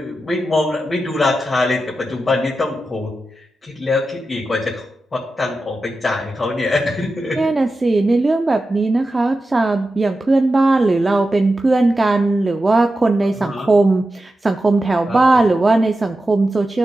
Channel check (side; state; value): both; normal; correlation 0.92